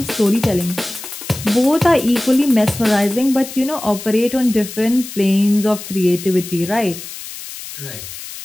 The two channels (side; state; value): left; noise; hiss, 12 dB below the sound